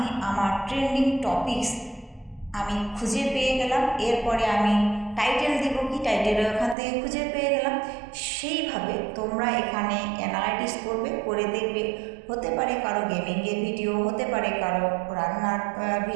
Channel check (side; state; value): left; drops out; at 6.8 s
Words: আমার ট্রেন্ডিং টপিকস আমি খুঁজে পেয়ে গেলাম। এরপরে আমি টাইটেল দিব, কি টাইটেল ওখান থেকে খুঁজে পেয়ে গেলাম। সেইভাবে তোমরা এখানে অ্যানালাইটিক্স করবে, করে দেখবে, হতে পারে কারো গেমিংয়ের ভিডিও, হতে পারে কারো রান্নার